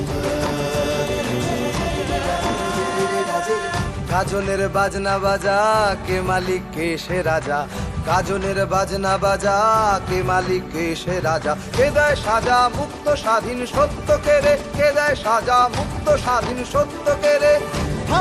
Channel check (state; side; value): identical; both; correlation 1.00